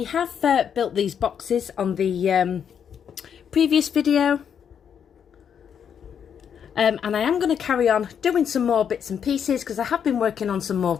have built these boxes on the previous video and I am going to carry on doing some more bits and pieces because I have been working on some more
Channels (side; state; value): right; quieter; 7.9 dB